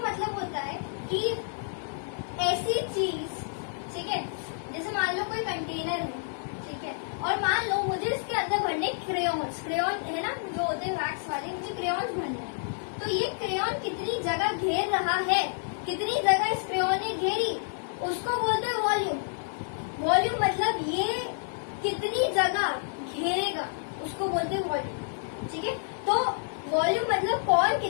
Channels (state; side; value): silent; right; 59 dB below the other